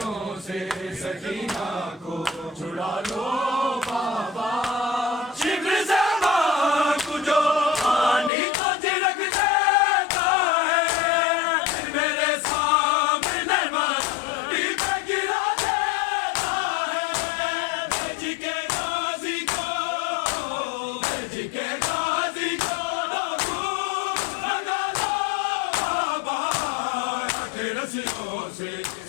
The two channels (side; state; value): right; drops out; at 8.3 s